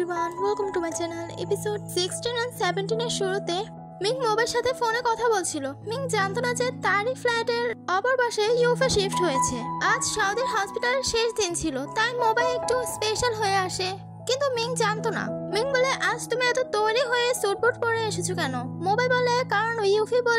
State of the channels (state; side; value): identical; both; correlation 1.00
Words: welcome to my channel. Episode 16 and 17 এর শুরুতে Ming মোবের সাথে ফোনে কথা বলছিল। মিং জানতো না যে তারই ফ্ল্যাটের অপর পাশে ইউফা শিফট হয়েছে। আজ সৌদির হসপিটালের শেষ দিন ছিল, তাই মোবাইল একটু স্পেশাল হয়ে আসে, কিন্তু মিং জানতো না। মিং বলে, আজ তুমি এত তৈরি হয়ে সুটবুট পরে এসেছো কেন? মোবাইল বলে, কারণ ইউফি